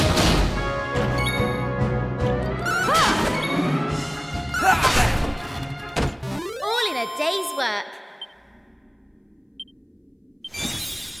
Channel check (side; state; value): both; identical; correlation 1.00